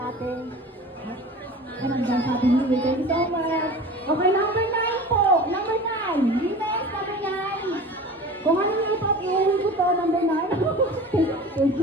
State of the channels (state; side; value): normal; both; correlation 0.38